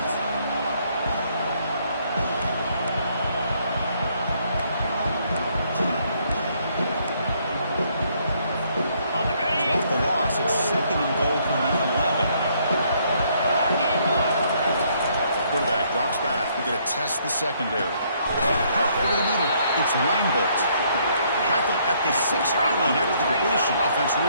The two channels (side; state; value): both; inverted; correlation -0.68